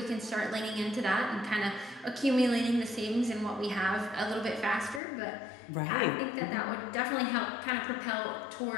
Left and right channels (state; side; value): drops out; right; at 5.0 s